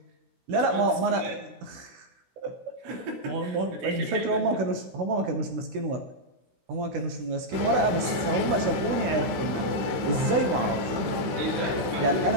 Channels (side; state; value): left; late; 16 ms